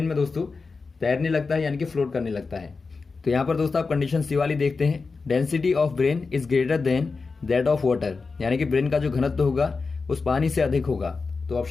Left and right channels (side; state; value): right; quieter; 4.4 dB